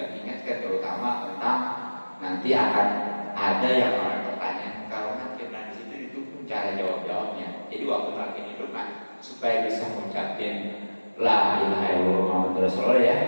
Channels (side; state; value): both; inverted; correlation -1.00